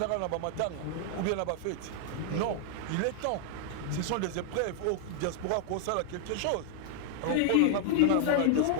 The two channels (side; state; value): both; different; correlation 0.00